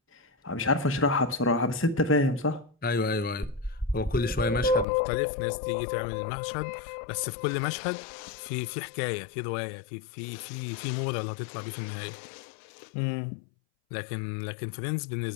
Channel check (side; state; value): right; drops out; at 4.9 s